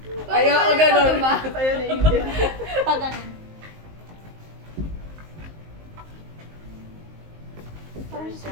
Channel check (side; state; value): left; late; 19 ms